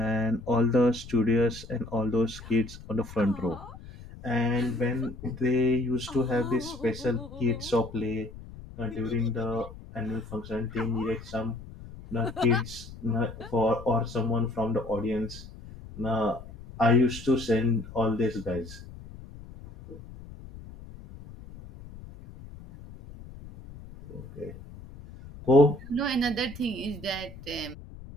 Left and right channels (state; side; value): noise; left; rumble, 16 dB below the sound